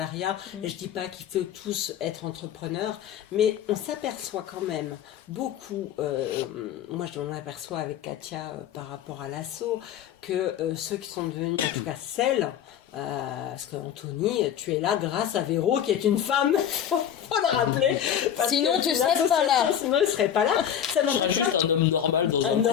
Je dis pas qu'il faut tous être entrepreneurs, mais on s'aperçoit quand même beaucoup, moi je m'en aperçois avec Katia par rapport à l'assaut, que ceux qui sont devenus, en tout cas celles, parce que Anthony, tu es là grâce à Véro qui est une femme, faut le rappeler. Parce Sinon, que tu serais pas là. Sinon, il serait pas là. Ça Je n'empêche serais pas. juste un homme normal dans Un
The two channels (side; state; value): right; quieter; 9.6 dB